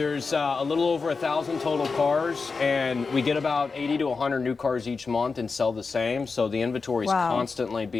a little over 1,000 total cars, and we get about 80 to 100 new cars each month and sell the same. So the inventory is constantly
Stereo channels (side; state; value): right; quieter; 4.6 dB